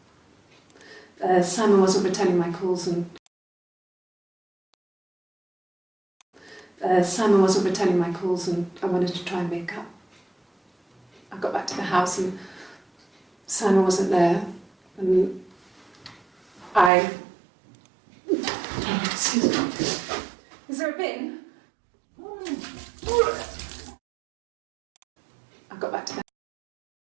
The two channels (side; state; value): left; drops out; at 16.9 s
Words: Simon wasn't returning my calls and I wanted to try and make up. I got back to the house and Simon wasn't there, and excuse me. Is there a bin? I got back to